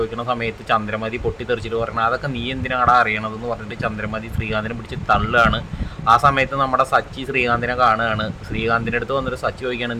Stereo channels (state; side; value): identical; both; correlation 1.00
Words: സമയത്ത് ചന്ദ്രമതി പൊട്ടിത്തെറിച്ചിട്ട് പറഞ്ഞാൽ അതൊക്കെ നീ എന്തിനാണ് അറിയണതെന്ന് പറഞ്ഞിട്ട് ചന്ദ്രമതി ശ്രീകാന്തിനെ പിടിച്ച് തള്ളുകയാണ്. ആ സമയത്ത് നമ്മുടെ സച്ചി ശ്രീകാന്തിനെ കാണുകയാണ്. ശ്രീകാന്തിൻ്റെ അടുത്ത് വന്നിട്ട് സച്ചി ചോദിക്കുകയാണ്,